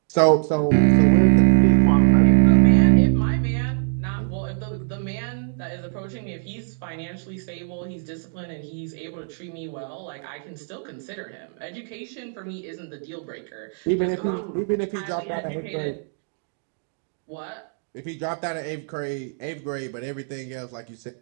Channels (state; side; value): silent; left; 63 dB below the other